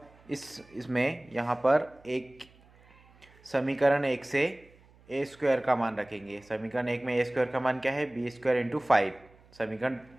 इसमें यहाँ पर एक समीकरण 1 से a² का मान रखेंगे। समीकरण 1 में a² का मान क्या है? b² into 5। समीकरण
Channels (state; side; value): noise; right; hum, 28 dB below the sound